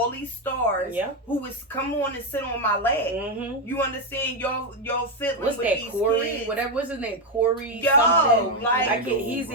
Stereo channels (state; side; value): normal; both; correlation 0.06